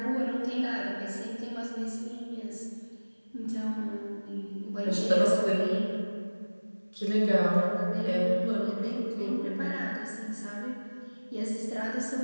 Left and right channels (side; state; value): both; inverted; correlation -1.00